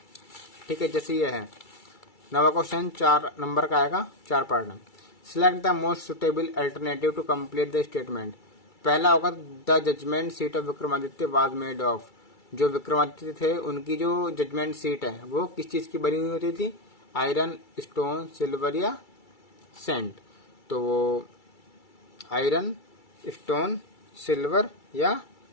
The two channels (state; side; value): late; right; 2.3 ms